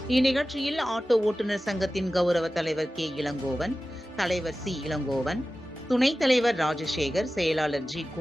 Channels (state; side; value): normal; both; correlation 0.95